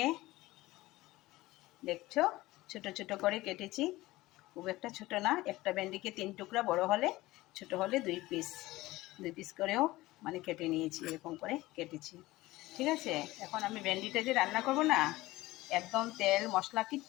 দেখছো ছোট ছোট করে কেটেছি। খুব একটা ছোট না, একটা ভেন্ডিকে 3 টুকরা, বড় হলে ছোট হলে 2 পিস করেও মানে কেটে নিয়েছি, এরকম করে কেটেছি। ঠিক আছে, এখন আমি ভেন্ডিটা যে রান্না করব না, একদম তেল মশলা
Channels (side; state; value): right; quieter; 18.6 dB